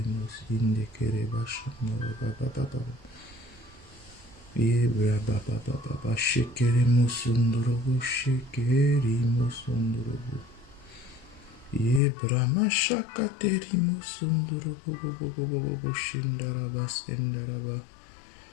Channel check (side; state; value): right; drops out; at 12.0 s